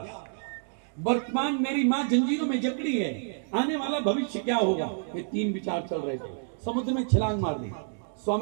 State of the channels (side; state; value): left; silent; digital silence